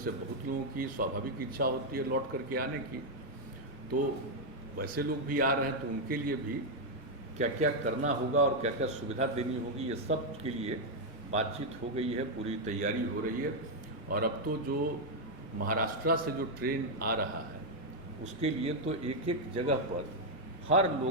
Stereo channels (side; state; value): both; normal; correlation 0.00